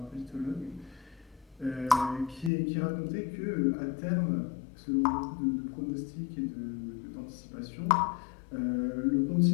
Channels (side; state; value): right; drops out; at 2.5 s